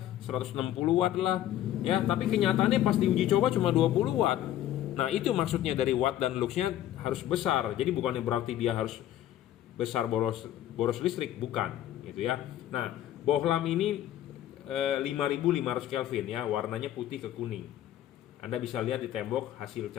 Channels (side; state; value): right; quieter; 12.5 dB